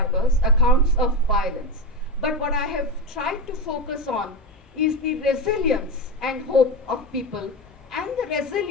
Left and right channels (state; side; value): normal; both; correlation 0.17